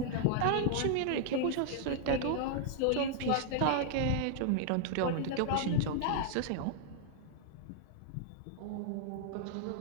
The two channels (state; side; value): different; both; correlation -0.01